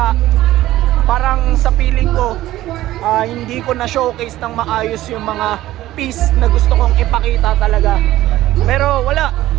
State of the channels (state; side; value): quieter; left; 15.2 dB